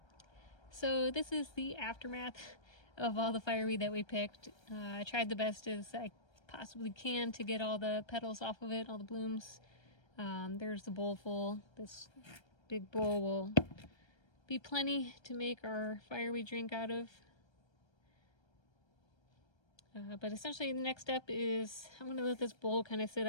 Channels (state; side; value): late; right; 1.3 ms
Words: So this is the aftermath of all the fireweed that we picked. I tried the best as I possibly can to get all the petals off of it, all the blooms. There's the bowl full. This big bowl will be plenty to make our fireweed drink out of. But essentially the next step is I'm going to let this bowl kind of sit